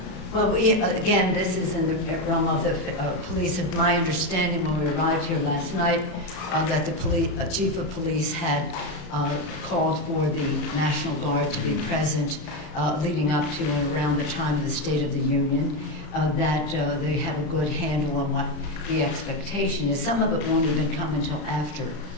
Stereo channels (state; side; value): late; right; 33 ms